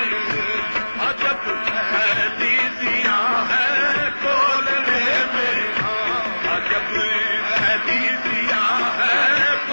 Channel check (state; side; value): inverted; both; correlation -1.00